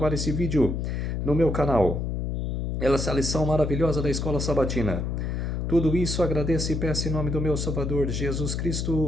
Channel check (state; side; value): noise; left; hum, 2 dB below the sound